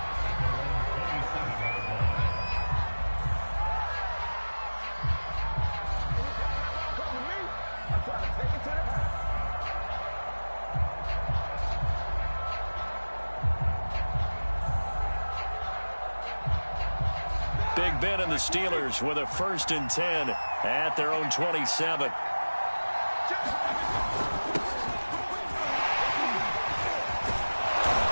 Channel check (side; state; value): both; inverted; correlation -1.00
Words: Big Ben and the Steelers with a 1st and 10 at their own 27.